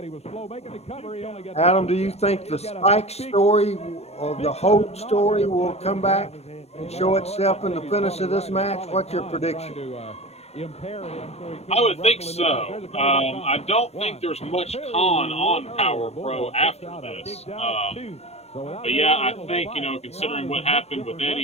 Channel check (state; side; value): late; right; 0.31 ms